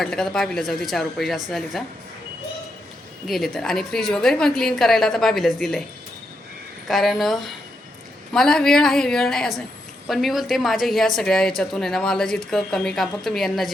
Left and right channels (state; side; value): normal; both; correlation 0.82